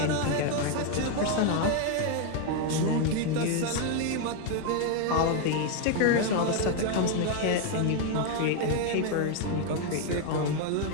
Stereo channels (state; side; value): different; both; correlation 0.01